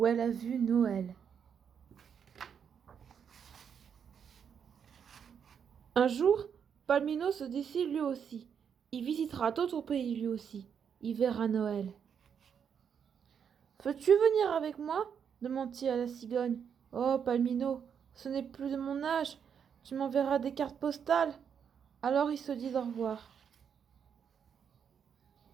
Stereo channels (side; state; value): left; quieter; 7.5 dB